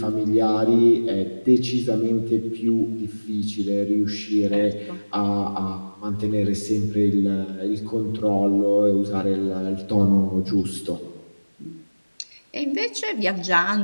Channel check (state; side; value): inverted; both; correlation -1.00